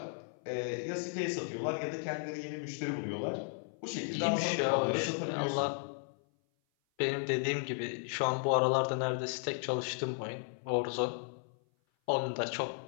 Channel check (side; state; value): right; silent; 55 dB below the other